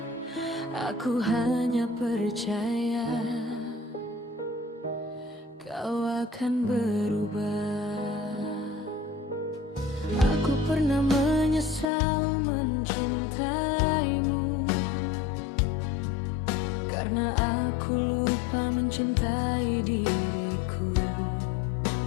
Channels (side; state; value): right; drops out; at 11.9 s